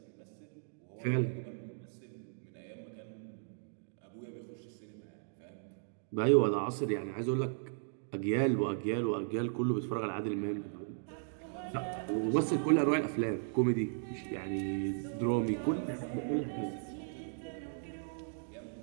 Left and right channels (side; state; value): left; silent; digital silence